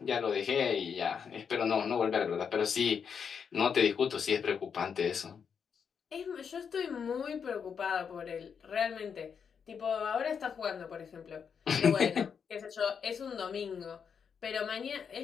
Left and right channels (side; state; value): right; quieter; 6.8 dB